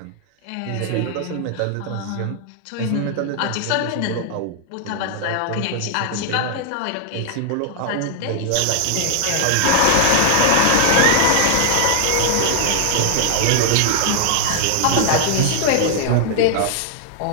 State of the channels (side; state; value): both; different; correlation -0.01